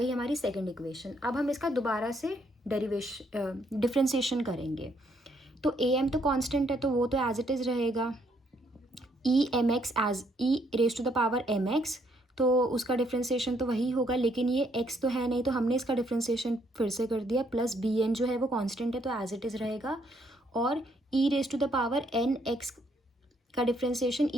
हमारी सेकेंड इक्वेशन। अब हम इसका दोबारा से डिफ्रेंसिएशन करेंगे, तो ए एम तो कांस्टेंट है तो वो तो एज इट इज़ रहेगा, e m x as e raise to the power m x, तो उसका डिफ्रेंसिएशन तो वही होगा, लेकिन ये एक्स तो है नहीं तो हमने इसका डिफ्रेंसिएशन फिर से कर दिया, प्लस बी एन जो है वो कांस्टेंट है तो एज इट इज़ रहेगा, और e raise to the power n x का differentiation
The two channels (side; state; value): both; normal; correlation 0.70